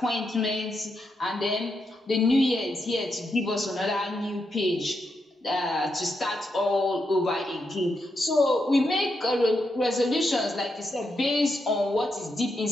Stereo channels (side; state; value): both; normal; correlation 0.83